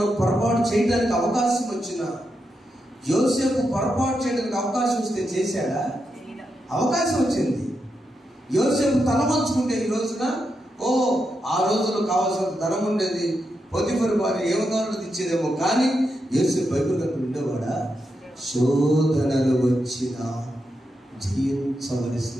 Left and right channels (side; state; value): both; normal; correlation 0.85